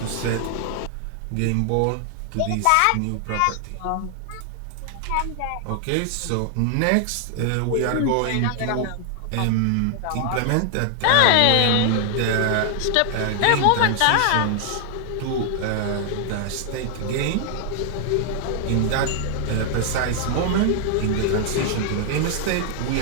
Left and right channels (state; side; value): different; both; correlation 0.00